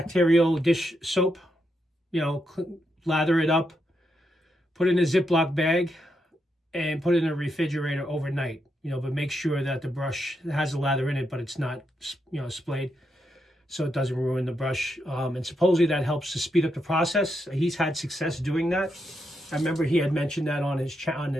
dish soap. You know, lather it up, put it in a Ziploc bag, and put it in a refrigerator overnight. You know, but make sure that the brush has the lather in it, but it's not, you know, splayed, so it doesn't ruin the brush. And supposedly that helps to speed up the process. He's had success doing that. I remember he had mentioned that on his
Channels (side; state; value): both; normal; correlation 0.82